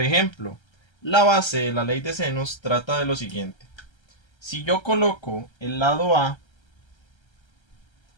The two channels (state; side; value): late; right; 1.3 ms